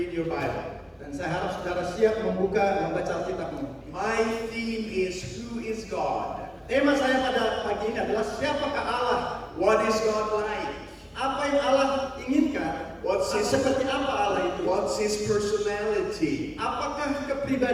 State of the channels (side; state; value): both; identical; correlation 1.00